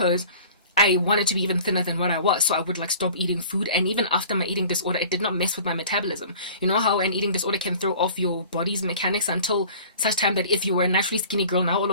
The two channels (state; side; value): inverted; both; correlation -0.45